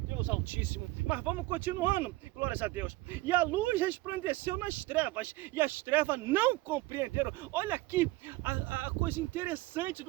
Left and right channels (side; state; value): left; quieter; 19.4 dB